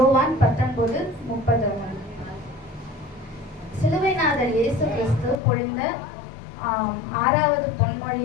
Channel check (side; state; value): right; drops out; at 5.4 s